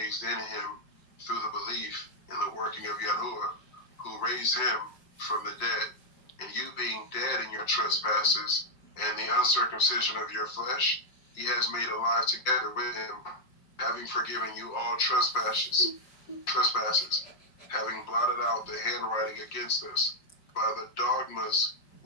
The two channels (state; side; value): late; right; 5.6 ms